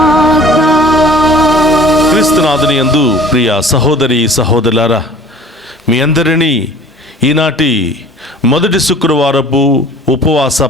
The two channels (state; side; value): normal; both; correlation 0.48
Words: క్రీస్తునాథుని యందు ప్రియ సహోదరి సహోదరులారా, మీ అందరినీ ఈనాటి మొదటి శుక్రవారపు ఉపవాస